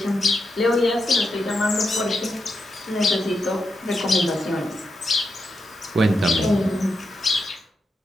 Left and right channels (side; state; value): both; normal; correlation 0.85